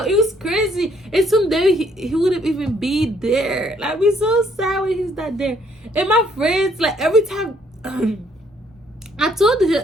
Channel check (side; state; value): both; normal; correlation 0.66